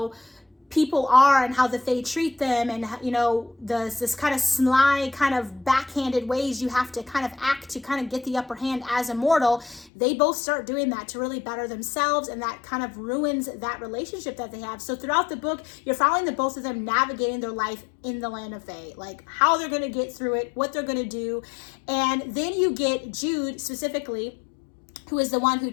people are and how the fae treat them, and you know, this kind of sly, kind of backhanded ways you have to kind of act to kind of get the upper hand as a mortal, they both start doing that to really better themselves, and that kind of ruins that relationship that they have. So throughout the book, you're following the both of them navigating their life in the land of fae, like how they're going to get through it, what they're going to do. And then you get Jude specifically, who is the one who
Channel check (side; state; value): right; drops out; at 9.9 s